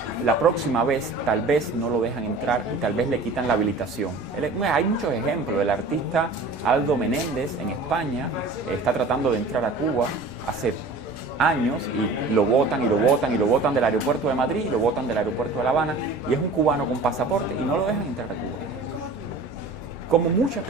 la próxima vez tal vez no lo dejan entrar y tal vez le quitan la habilitación. Hay muchos ejemplos. El artista Aldo Menéndez en España está tratando de entrar a Cuba hace años y lo botan y lo botan y lo botan del aeropuerto de Madrid, lo botan del aeropuerto de La Habana y es un cubano con pasaporte y no lo dejan entrar a Cuba. Como muchas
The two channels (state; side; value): quieter; left; 3.4 dB